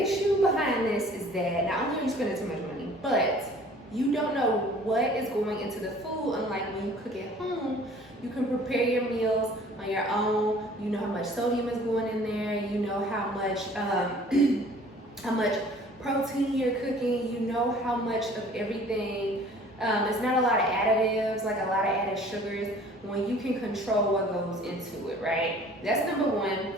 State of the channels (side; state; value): both; normal; correlation 0.51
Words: issue behind this is that not only are you spending too much money, but you don't know what is going into the food. Unlike when you cook at home, you can prepare your meals on your own. You know how much sodium is going in there. You know how much protein you're cooking. You know how much of everything. It's not a lot of additives, like a lot of added sugars, when you can control what goes into it, right? That's number one.